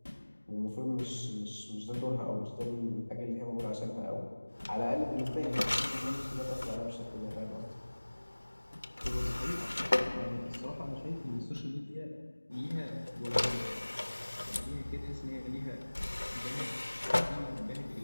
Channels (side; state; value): both; inverted; correlation -1.00